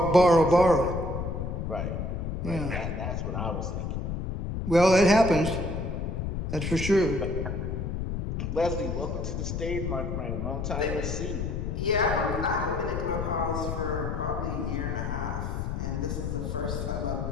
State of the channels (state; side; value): noise; left; rumble, 3 dB below the sound